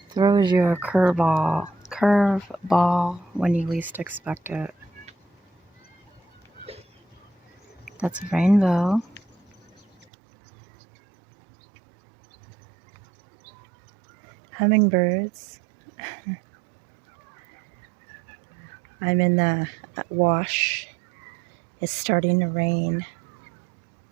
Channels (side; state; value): left; drops out; at 10.1 s